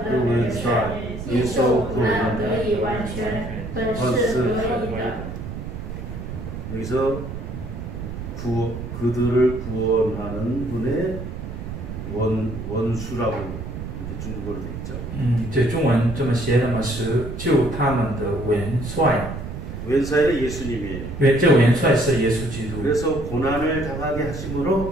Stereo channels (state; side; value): noise; right; rumble, 8 dB below the sound